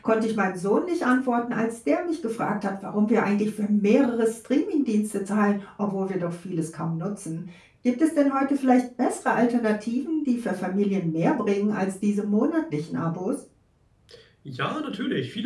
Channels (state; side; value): identical; both; correlation 1.00